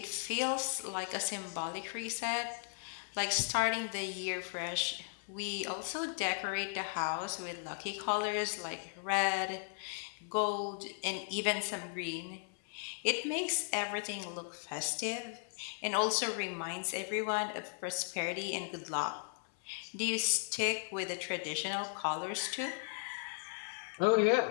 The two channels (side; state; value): right; silent; 53 dB below the other